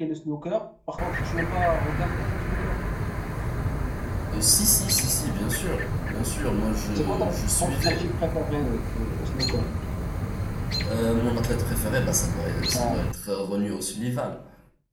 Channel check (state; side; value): identical; both; correlation 1.00